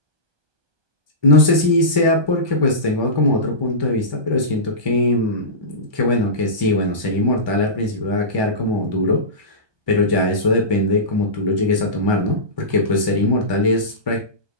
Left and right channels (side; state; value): left; late; 1.2 ms